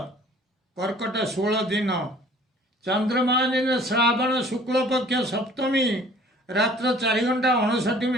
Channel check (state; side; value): normal; both; correlation 0.52